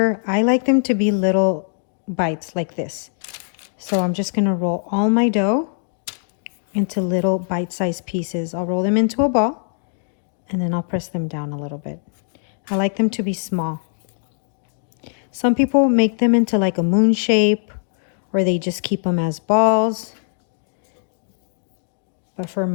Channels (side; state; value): right; silent; 65 dB below the other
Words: I like them to be little bites like this. So I'm just gonna roll all my dough into little bite-sized pieces. I'll roll them into a ball and then I'll press them down a little bit. I like them to be small. Some people make them into like a moon shape or they just keep them as balls. But for